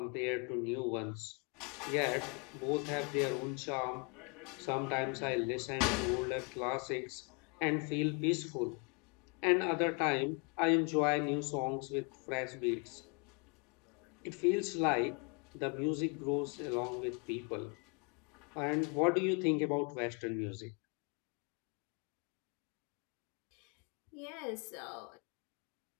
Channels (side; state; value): right; quieter; 34.4 dB